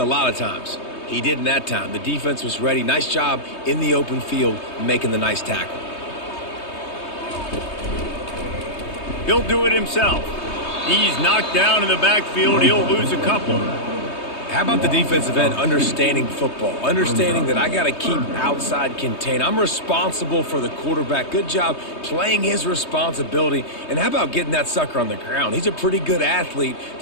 lot of times. He didn't that time. The defense was ready. Nice job in the open field making the nice tackle. He'll do it himself. He's knocked down in the backfield. He'll lose a couple. How about the defensive end understanding football, understanding that I got to keep outside contained. I'm responsible for the quarterback. Good job playing his responsibility. And how about getting that sucker on the ground? He's a pretty good athlete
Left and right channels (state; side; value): late; right; 3.2 ms